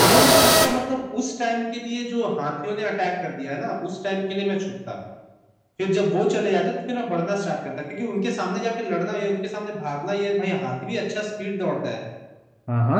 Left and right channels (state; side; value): identical; both; correlation 1.00